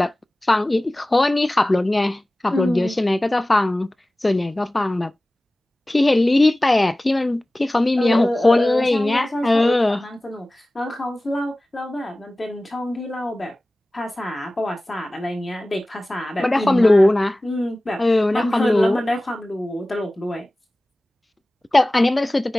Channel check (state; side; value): normal; both; correlation 0.98